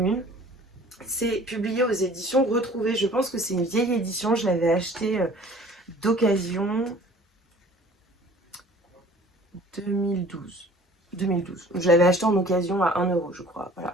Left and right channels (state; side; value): normal; both; correlation 0.49